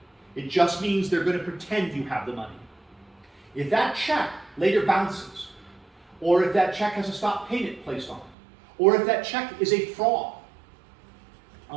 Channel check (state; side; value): drops out; left; at 8.3 s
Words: It just means they're going to pretend you have the money. If that check later bounces, or if that check has a stop payment placed on it, or if that check is a fraud